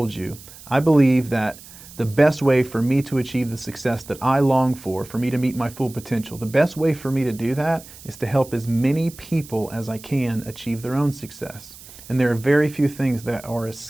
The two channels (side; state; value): right; noise; hiss, 19 dB below the sound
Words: you, I believe that the best way for me to achieve the success that I long for me to meet my full potential, the best way for me to do that is to help as many people as I can achieve their own success. And there are very few things that are as